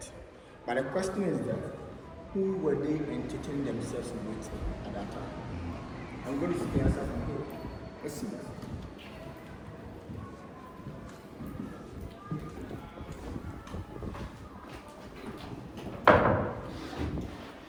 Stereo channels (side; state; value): both; identical; correlation 1.00